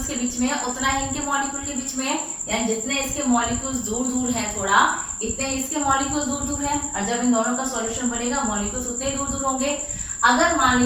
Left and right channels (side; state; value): both; identical; correlation 1.00